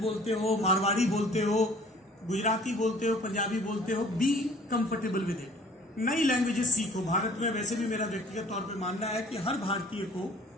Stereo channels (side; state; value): both; normal; correlation 0.52